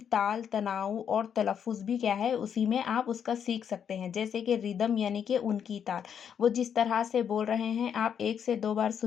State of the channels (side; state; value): right; quieter; 8.0 dB